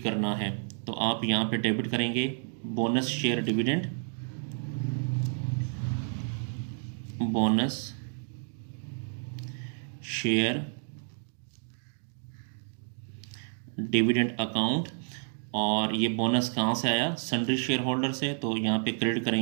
करना है। तो आप यहाँ पे डेबिट करेंगे bonus share dividend, bonus share dividend account, और ये बोनस कहाँ से आया? सन्ड्री शेयर होल्डर से, तो यहाँ पे क्रेडिट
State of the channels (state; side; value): silent; left; 58 dB below the other